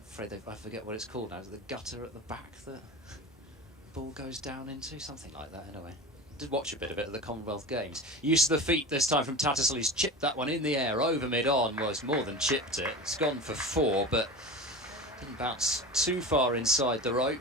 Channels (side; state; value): both; normal; correlation 0.30